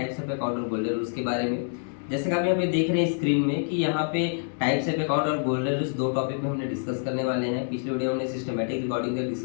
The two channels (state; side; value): silent; right; digital silence